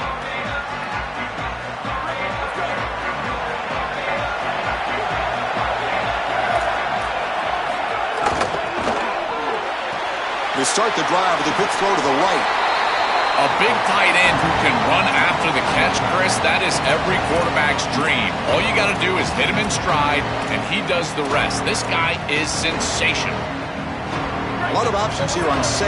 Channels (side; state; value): both; identical; correlation 1.00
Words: They start the drive with a quick throw to the right. A big tight end who can run after the catch, Chris, that is every quarterback's dream. All you got to do is hit him in stride, and he does the rest. This guy is sensational. A lot of options here on